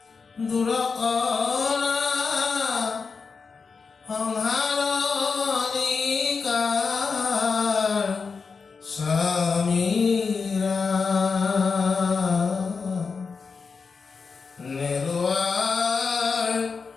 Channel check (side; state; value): right; quieter; 5.0 dB